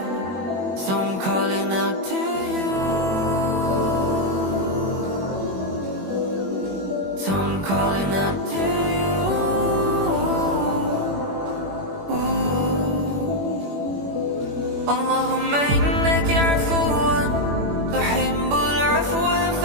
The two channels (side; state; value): left; late; 21 ms